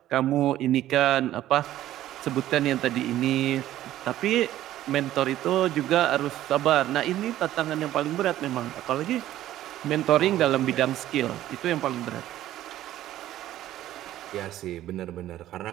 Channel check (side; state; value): left; quieter; 13.5 dB